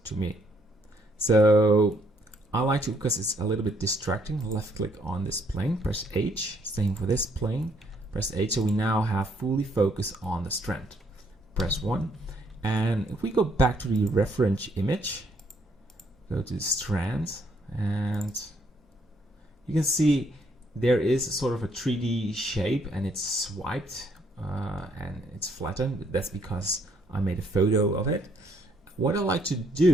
to me. So I like to, because it's a little bit distracting, left click on this plane, press H, same for this plane, press H, so we now have fully focus on the strand. Press 1. And if we go back to the reference image, go to the strand, and you can see there is sort of a 3D shape and it's swiped and it's flattened. That's because I made a photo of it. What I like to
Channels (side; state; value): both; normal; correlation 0.69